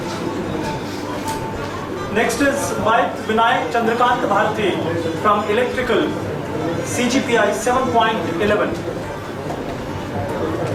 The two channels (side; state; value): both; identical; correlation 1.00